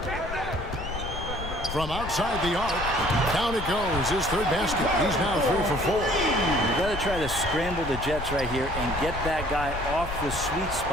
From outside the arc, down it goes. His third basket. He's now 3 for 4. You got to try to scramble the Jets right here and get that guy off the sweet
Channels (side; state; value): left; noise; rumble, 8 dB below the sound